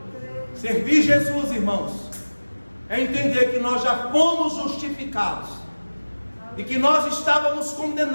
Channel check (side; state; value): both; inverted; correlation -1.00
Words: Servir Jesus, irmãos, é entender que nós já fomos justificados, e que nós estávamos